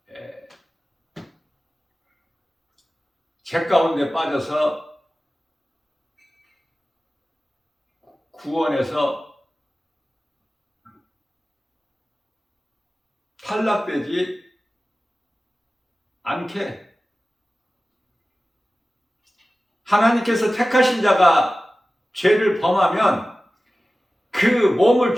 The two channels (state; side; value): normal; both; correlation 0.96